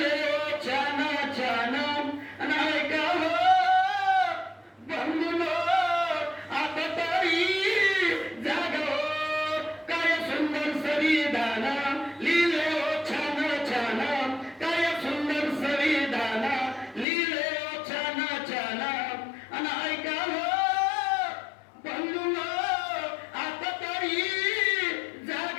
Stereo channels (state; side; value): drops out; right; at 17.1 s